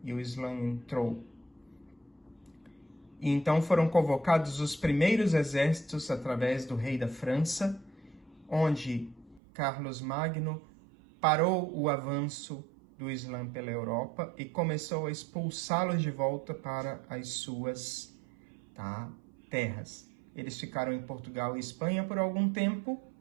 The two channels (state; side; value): drops out; left; at 9.4 s